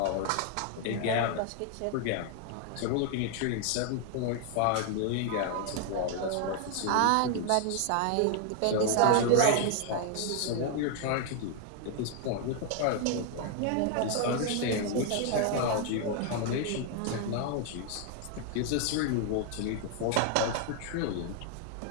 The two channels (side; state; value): both; different; correlation 0.00